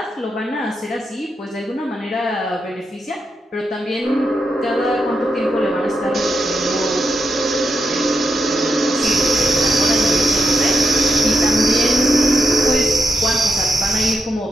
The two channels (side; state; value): both; normal; correlation 0.84